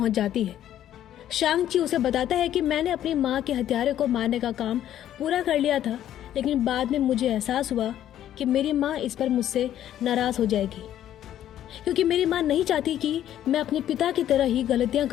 जाती है। शांग-ची उसे बताता है कि मैंने अपनी माँ के हथियारे को मारने का काम पूरा कर लिया था, लेकिन बाद में मुझे एहसास हुआ कि मेरी माँ इस पर मुझसे नाराज हो जाएगी, क्योंकि मेरी माँ नहीं चाहती कि मैं अपने पिता की तरह ही गलतियां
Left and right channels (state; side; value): quieter; right; 11.5 dB